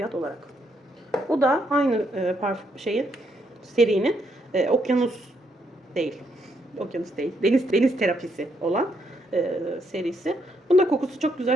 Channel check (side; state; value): both; normal; correlation 0.75